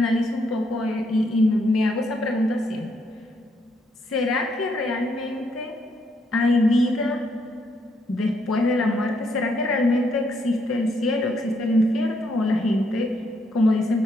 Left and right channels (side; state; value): both; normal; correlation 0.74